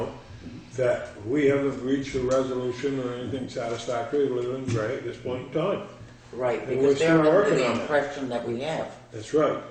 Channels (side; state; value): both; identical; correlation 1.00